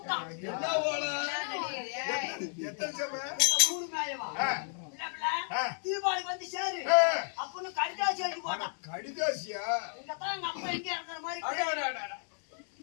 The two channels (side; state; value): right; silent; 56 dB below the other